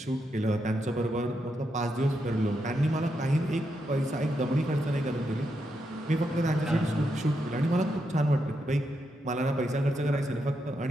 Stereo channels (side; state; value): both; normal; correlation 0.83